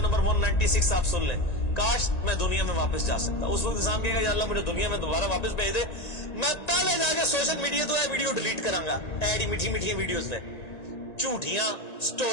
196 آپ سن لیں, کاش میں دنیا میں واپس جا سکتا. اس وقت انسان کہے گا یا اللہ مجھے دنیا میں دوبارہ واپس بھیج دے, میں پہلے جا کے سوشل میڈیا تو ویڈیو ڈیلیٹ کراں گا. ایڈی میٹھی میٹھی ویڈیوز نے, جھوٹیاں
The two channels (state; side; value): late; right; 1.9 ms